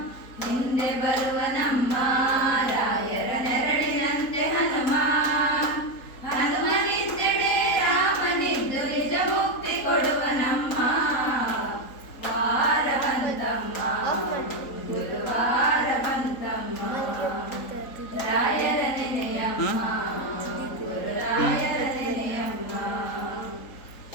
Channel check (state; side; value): late; right; 3.8 ms